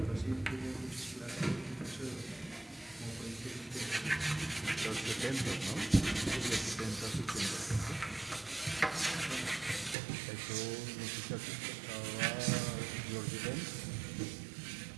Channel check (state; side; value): drops out; left; at 10.0 s